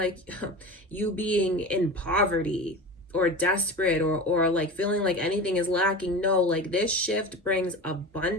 you being in poverty or desperate or like feeling like anything is lacking. No, like this shift brings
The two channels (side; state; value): both; normal; correlation 0.30